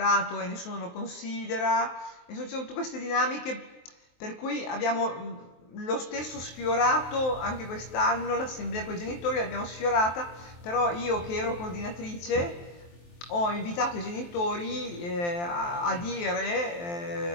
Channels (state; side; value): late; right; 23 ms